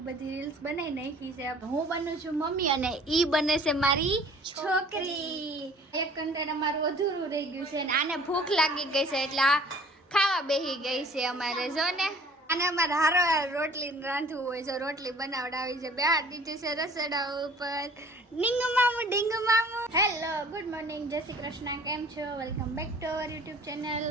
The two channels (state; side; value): normal; both; correlation 0.51